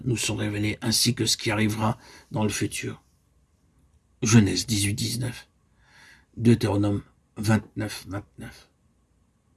nous sont révélées ainsi que ce qui arrivera dans le futur. Genèse 18:19, Deutéronome 29:29.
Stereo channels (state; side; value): identical; both; correlation 1.00